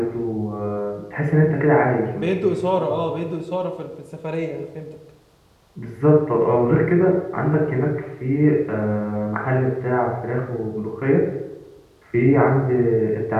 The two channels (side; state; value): both; identical; correlation 1.00